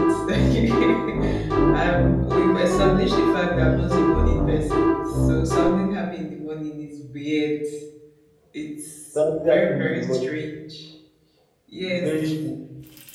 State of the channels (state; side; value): identical; both; correlation 1.00